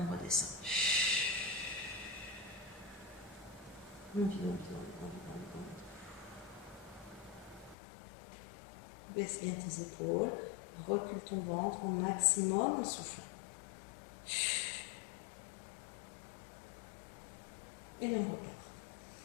redescend. On vide. Baisse bien tes épaules, recule ton ventre au maximum en soufflant. Et on repart.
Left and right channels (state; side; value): drops out; right; at 7.8 s